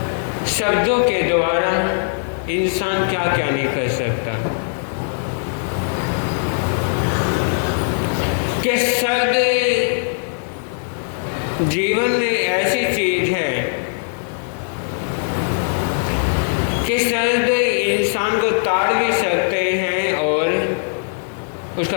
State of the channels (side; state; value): right; silent; 66 dB below the other